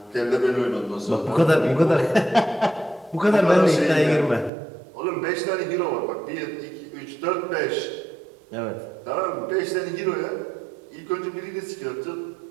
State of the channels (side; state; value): left; drops out; at 4.5 s